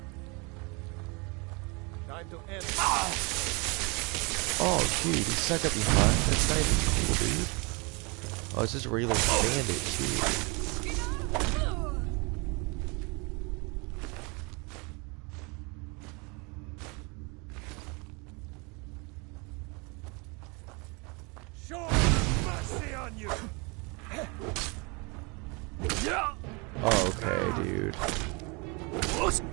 Time to end. Oh, dude, he stuck up behind. That's not even cool, dude. Oh, it's just a regular bandit, too. Show mercy on you. Oh, okay, dude.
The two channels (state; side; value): quieter; left; 29.7 dB